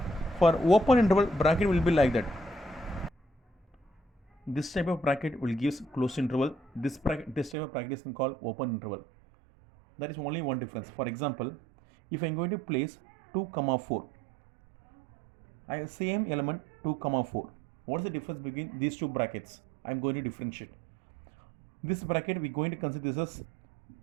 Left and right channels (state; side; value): drops out; left; at 7.6 s